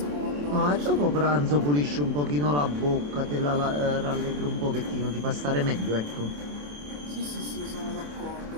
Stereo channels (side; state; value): left; late; 27 ms